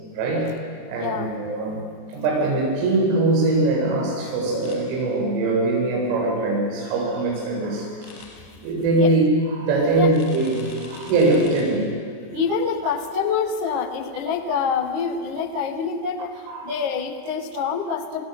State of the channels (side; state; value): left; late; 23 ms